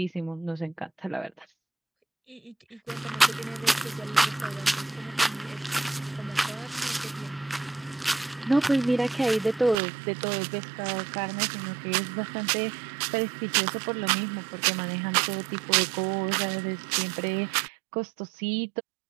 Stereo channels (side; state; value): left; drops out; at 9.8 s